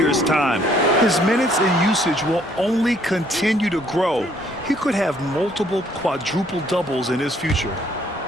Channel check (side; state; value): both; normal; correlation 0.65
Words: time. His minutes and usage will only continue to grow. He could have multiple quadruple doubles in his future.